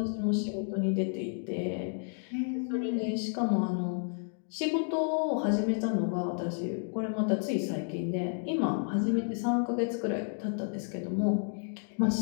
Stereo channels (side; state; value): right; silent; 57 dB below the other